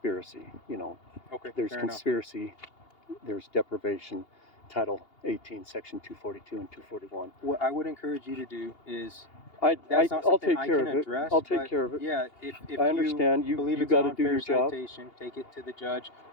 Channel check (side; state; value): right; late; 2.8 ms